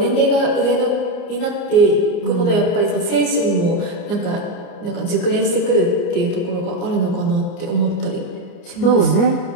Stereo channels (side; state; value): right; late; 29 ms